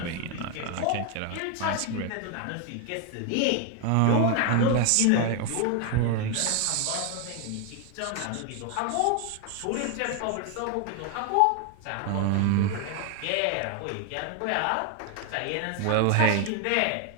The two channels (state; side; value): different; both; correlation 0.00